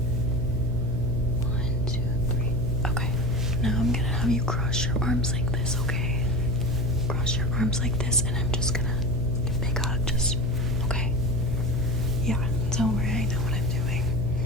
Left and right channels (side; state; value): right; noise; hum, 10 dB below the sound